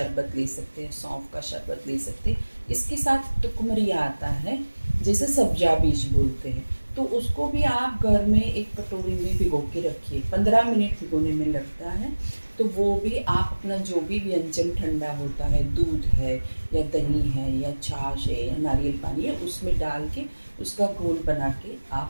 ले सकते हैं, सौंफ का शरबत ले सकते हैं। इसके साथ टुकमरिया आता है, जैसे सब्जा बीज बोलते हैं, तो उसको भी आप घर में एक कटोरी में भिगो के रखिए, 15 मिनट भिगोने में लगता है। तो वो भी आप अपना जो भी व्यंजन ठंडा होता है, दूध है या दही है या छाछ है या नारियल पानी है, उसमें डाल के उसका घोल बना के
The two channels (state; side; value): inverted; both; correlation -1.00